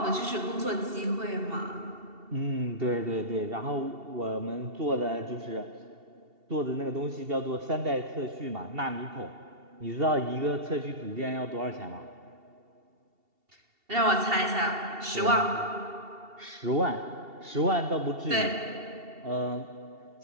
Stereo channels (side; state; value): left; late; 2.7 ms